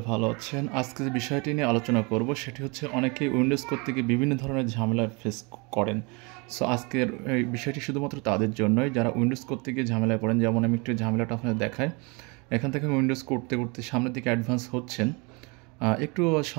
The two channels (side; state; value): left; quieter; 29.7 dB